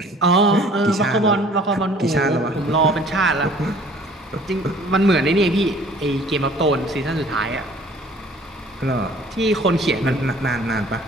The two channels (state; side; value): normal; both; correlation 0.52